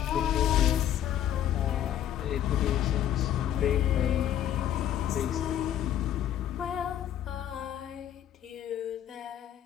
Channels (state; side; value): quieter; right; 10.8 dB